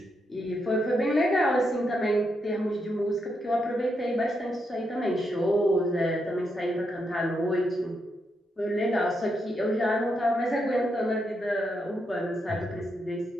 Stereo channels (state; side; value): normal; both; correlation 0.81